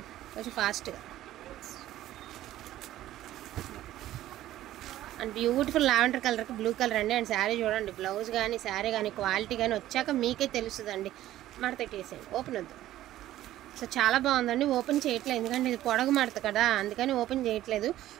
కొంచెం ఫాస్ట్గా అండ్ బ్యూటిఫుల్ లావెండర్ కలర్కి బ్లూ కలర్ అండి. అండ్ శారీ చూడండి, బ్లౌజ్ కానీ శారీ కానీ క్వాలిటీ కానీ వచ్చాక మీకే తెలుస్తుందండి. మడతెట్టేసేయండి, ఓపెన్ వద్దు. సో చాలా బాగుందండి. ఓపెన్ చేయట్లేదు ఎందుకంటే ఇది పొడగు మడత కదా, అందుకని ఓపెన్ చేయట్లేదు.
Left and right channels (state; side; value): quieter; left; 13.9 dB